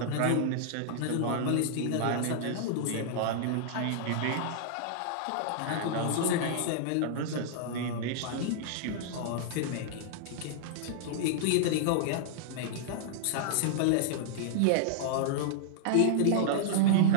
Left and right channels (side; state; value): both; different; correlation -0.01